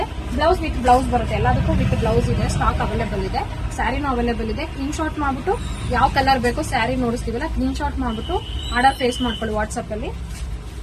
ಬ್ಲೌಸ್ ವಿತ್ ಬ್ಲೌಸ್ ಬರುತ್ತೆ, ಎಲ್ಲದಕ್ಕೂ ವಿತ್ ಬ್ಲೌಸ್ ಇದೆ. ಸ್ಟಾಕ್ ಅವೈಲೇಬಲ್ ಇದೆ, ಸ್ಯಾರಿನೂ ಅವೈಲೇಬಲ್ ಇದೆ. ಸ್ಕ್ರೀನ್ ಶಾಟ್ ಮಾಡ್ಬಿಟ್ಟು ಯಾವ ಕಲರ್ ಬೇಕೋ ಸ್ಯಾರಿ ನೋಡಿಸ್ತೀವಲ್ಲ, ಸ್ಕ್ರೀನ್ ಶಾಟ್ ಮಾಡ್ಬಿಟ್ಟು ಆರ್ಡರ್ ಫೇಸ್ ಮಾಡ್ಕೊಳ್ಳಿ ವಾಟ್ಸ್ಆಪ್ ಅಲ್ಲಿ.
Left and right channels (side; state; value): both; identical; correlation 1.00